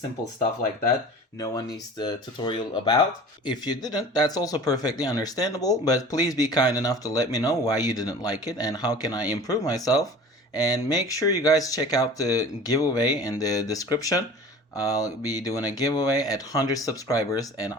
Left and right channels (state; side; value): normal; both; correlation 0.41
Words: stuff like that. No one needs the tutorial about. If you didn't, that's also perfectly understandable, but please be kind enough to let me know why you didn't like it and how can I improve myself. And make sure you guys check out the giveaway in the description. I'll be doing a giveaway at 100 subscribers, and